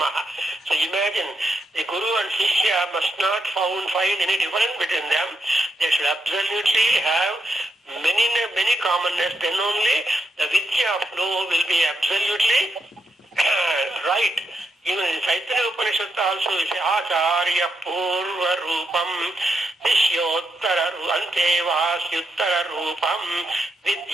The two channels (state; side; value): normal; both; correlation 0.81